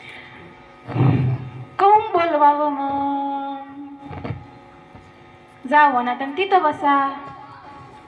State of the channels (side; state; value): both; identical; correlation 1.00